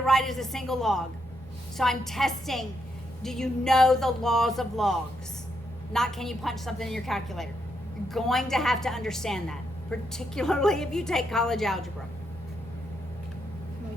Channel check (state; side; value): normal; both; correlation 0.79